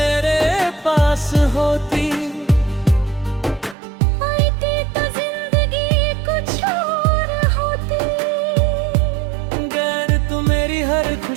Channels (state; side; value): drops out; left; at 3.8 s